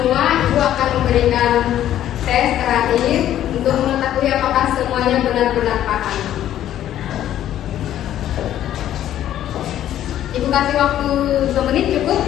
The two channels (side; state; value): right; quieter; 11.8 dB